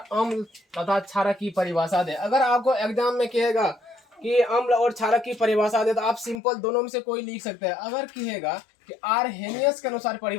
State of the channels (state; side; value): drops out; right; at 6.4 s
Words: तथा क्षारक की परिभाषा दे। अगर आपको एग्जाम में कहेगा कि अम्ल और क्षारक की परिभाषा दे तो आप सिंपल दोनों में से कोई लिख सकते हैं। अगर कहेगा कि आरहेनियस के अनुसार